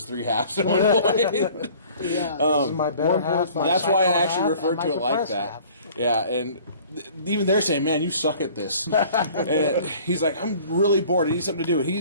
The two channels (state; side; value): inverted; both; correlation -0.50